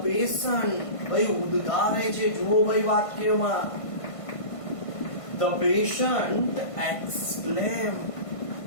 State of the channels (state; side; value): late; right; 1.5 ms